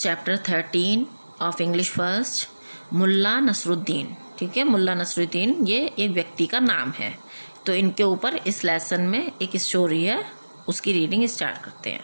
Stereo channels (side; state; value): both; inverted; correlation -1.00